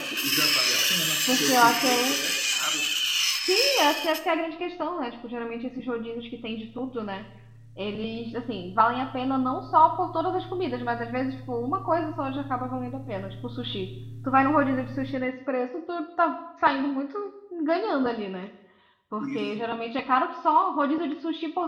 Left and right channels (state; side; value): identical; both; correlation 1.00